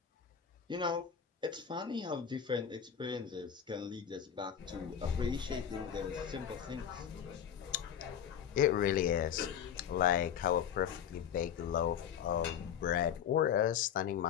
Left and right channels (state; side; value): quieter; right; 8.7 dB